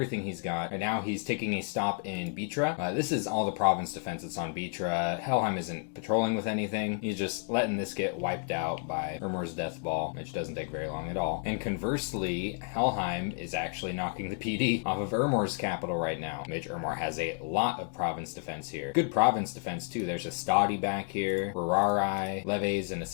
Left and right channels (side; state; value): right; quieter; 39.9 dB